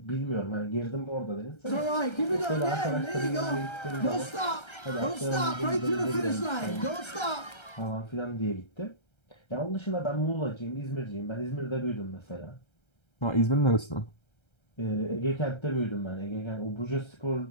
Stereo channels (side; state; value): right; late; 1.3 ms